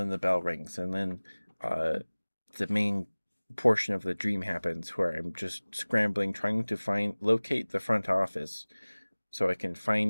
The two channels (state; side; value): inverted; both; correlation -1.00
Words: the bell rings. And then uh, the main portion of the dream happens where I'm just scrambling, trying to locate the front office so I can